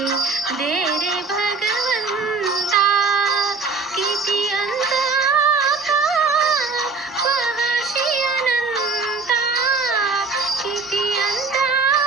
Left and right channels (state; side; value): quieter; left; 4.1 dB